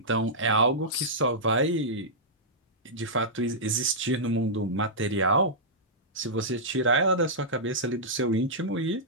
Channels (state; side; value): normal; both; correlation -0.12